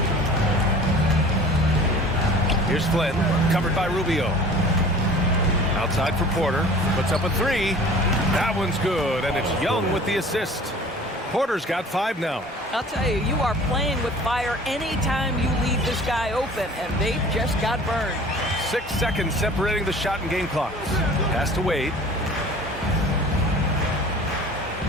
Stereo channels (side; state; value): both; normal; correlation 0.45